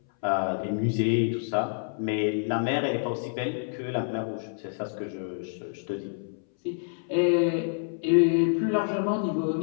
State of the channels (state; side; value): silent; right; 60 dB below the other